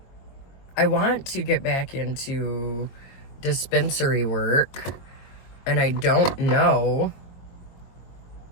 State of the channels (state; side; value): late; right; 22 ms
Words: I want to get back into dispensary work, and I don't know.